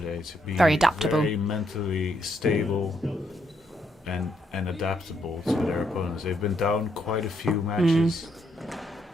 to be Very adaptable. very mentally stable and adaptable to their opponents. They've been down quite a few matches.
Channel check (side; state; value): both; normal; correlation 0.76